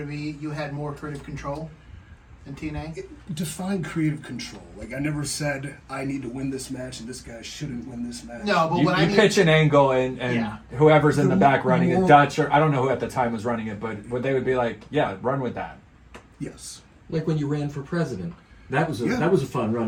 you had more creative control than TNA? Define creative control. Like, I never said I need to win this match and this guy shouldn't win this match. No, but You, what I you mean, pitch an angle and Yeah. whoever's in the The back running it, moral- Dutch or I don't know who at the time was running it, but they would be like, yeah, run with that. Yes. Like when you ran for president. That was a Yeah. that was a fun run.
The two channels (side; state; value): both; identical; correlation 1.00